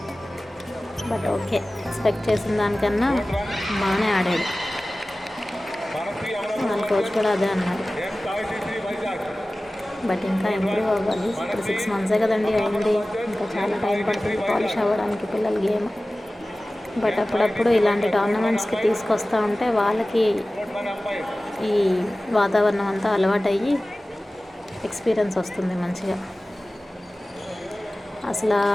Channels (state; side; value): normal; both; correlation 0.97